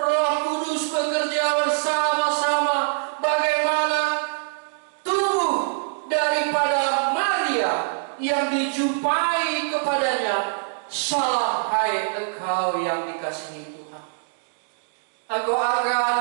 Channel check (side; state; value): left; silent; digital silence